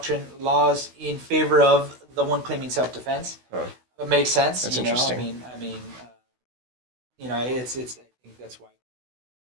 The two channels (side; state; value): left; late; 16 ms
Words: laws in favor of the one claiming self-defense. It makes sense. That's interesting. I mean, it's. I think that's why